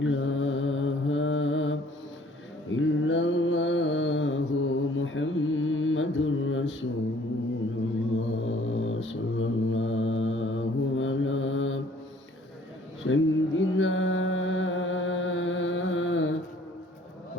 إله إلا الله محمد رسول الله صلى الله على سيدنا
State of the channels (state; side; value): normal; both; correlation 0.57